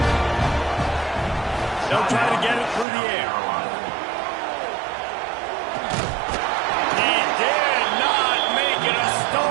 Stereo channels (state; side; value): drops out; left; at 2.9 s